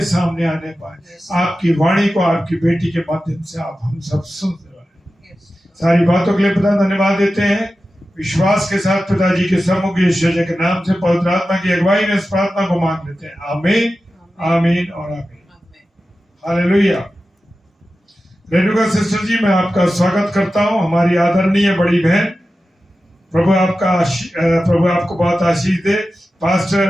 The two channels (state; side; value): normal; both; correlation 0.93